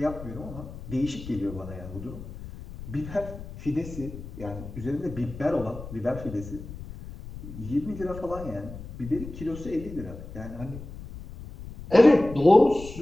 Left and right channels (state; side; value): noise; left; rumble, 12 dB below the sound